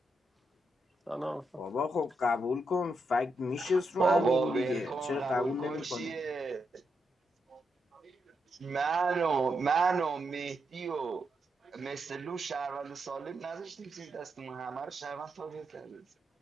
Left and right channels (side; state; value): both; normal; correlation 0.83